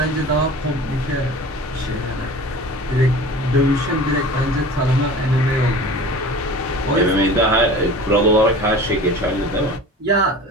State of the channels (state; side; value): normal; both; correlation 0.39